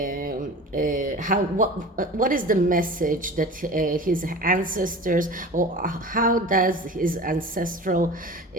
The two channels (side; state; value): both; normal; correlation 0.36